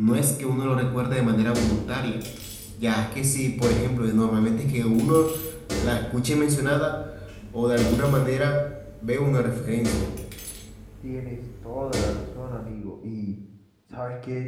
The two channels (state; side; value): identical; both; correlation 1.00